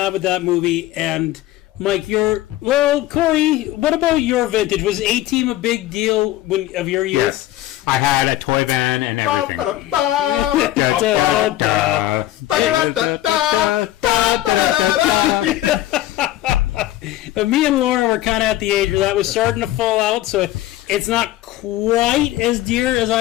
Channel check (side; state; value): right; quieter; 15.0 dB